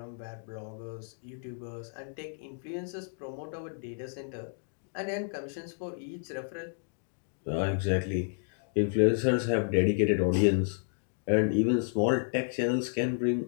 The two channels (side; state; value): right; silent; digital silence